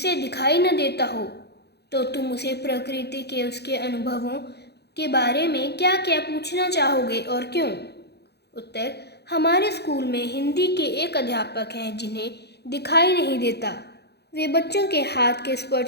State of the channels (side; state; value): right; late; 0.48 ms